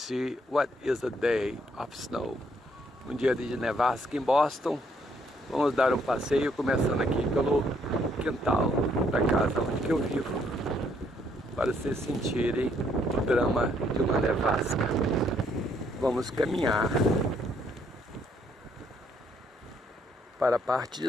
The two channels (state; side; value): normal; both; correlation 0.69